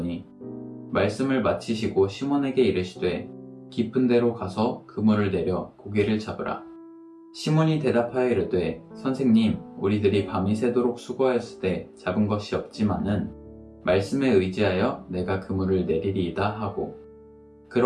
말씀을 마치시고 시몬에게 이르시되 깊은 데로 가서 그물을 내려 고기를 잡으라. 시몬이 대답하여 이르되 선생님, 우리들이 밤이 새도록 수고하였으되 잡은 것이 없지만은 말씀에 의지하여 내가 그물을 내리리이다 하고,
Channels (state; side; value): identical; both; correlation 1.00